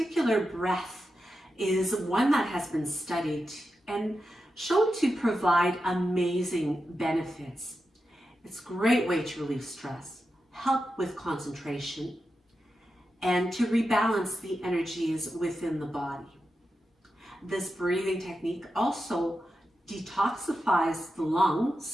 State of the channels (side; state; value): both; normal; correlation 0.90